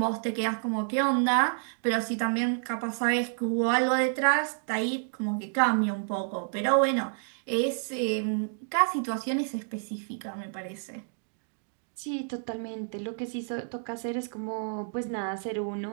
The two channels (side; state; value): left; silent; digital silence